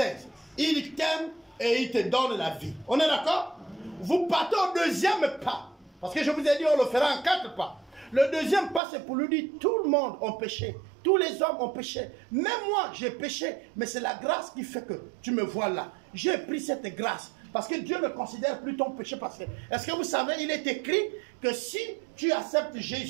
Il t'aime et il te donne la vie. On est d'accord? Vous partez au deuxième pas. Parce que je vous ai dit, on le fera en 4 pas. Le deuxième pas, c'est pour lui dire, tout le monde a péché. Tous les hommes ont péché. Même moi, j'ai péché. Mais c'est la grâce qui fait que tu me vois là. J'ai pris cette grâce. Parce que Dieu ne considère plus ton péché passé. Est-ce que vous savez, il est écrit que si tu acceptes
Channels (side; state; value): left; drops out; at 8.8 s